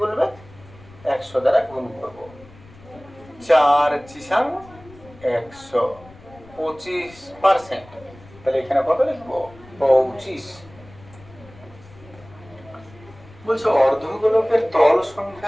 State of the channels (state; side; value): noise; left; rumble, 22 dB below the sound